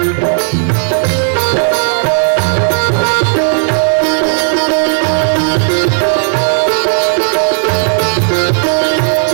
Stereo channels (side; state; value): left; silent; 73 dB below the other